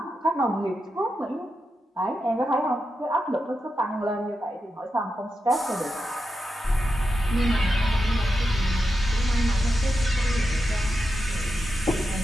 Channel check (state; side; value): normal; both; correlation 0.88